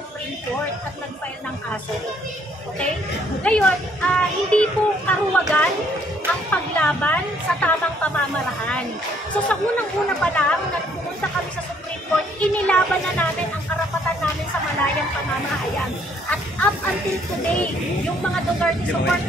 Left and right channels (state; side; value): normal; both; correlation 0.65